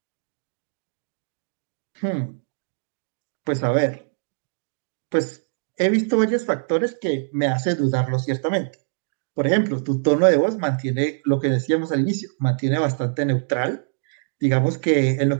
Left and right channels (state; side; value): silent; left; digital silence